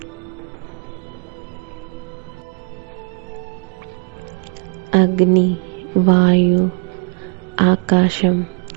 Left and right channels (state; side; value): quieter; left; 36.6 dB